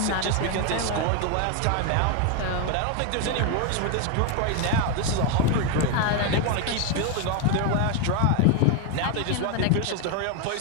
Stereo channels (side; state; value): both; different; correlation 0.01